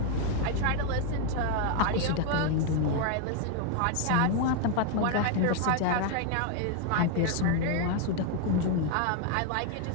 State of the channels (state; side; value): different; both; correlation 0.01